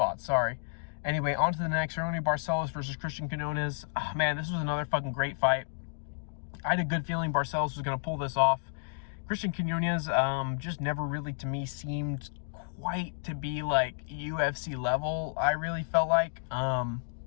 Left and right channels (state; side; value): silent; right; digital silence